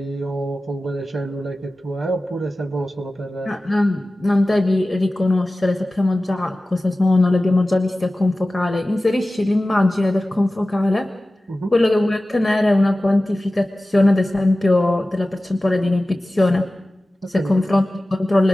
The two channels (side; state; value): both; normal; correlation 0.96